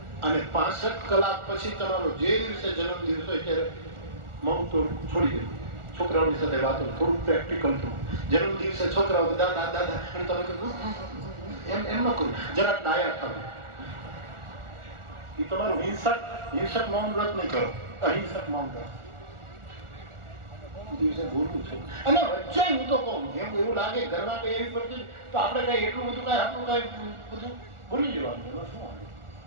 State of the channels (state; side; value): late; left; 1.4 ms